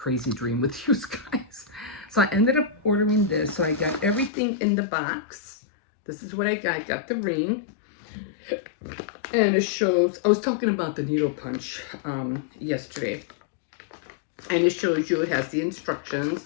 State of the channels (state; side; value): drops out; right; at 4.3 s